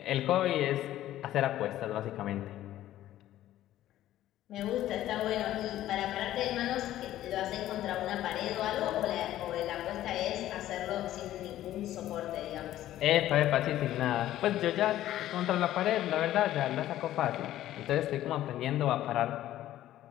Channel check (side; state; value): right; quieter; 13.5 dB